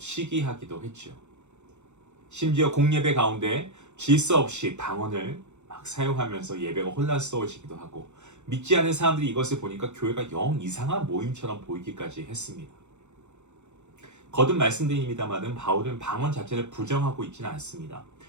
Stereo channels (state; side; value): late; left; 0.83 ms